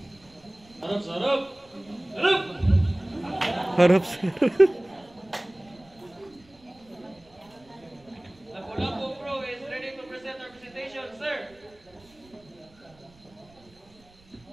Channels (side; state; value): right; noise; rumble, 28 dB below the sound